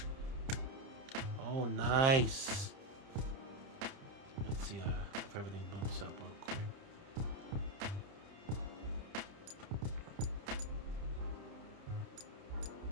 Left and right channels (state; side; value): late; left; 30 ms